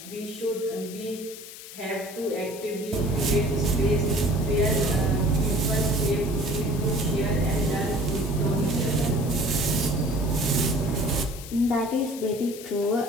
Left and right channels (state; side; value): noise; left; hiss, 14 dB below the sound